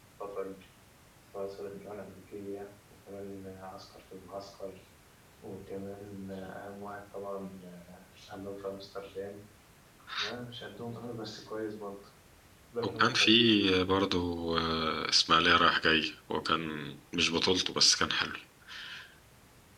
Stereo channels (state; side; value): identical; both; correlation 1.00